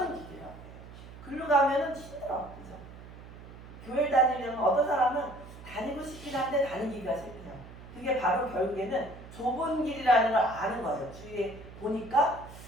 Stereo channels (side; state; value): right; noise; hum, 16 dB below the sound